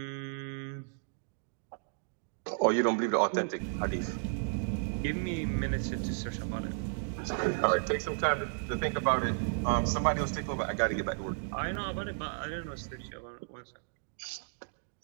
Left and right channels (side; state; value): left; silent; digital silence